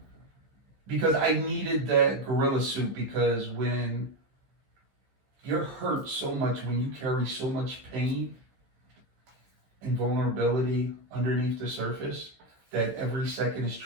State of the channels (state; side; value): late; left; 15 ms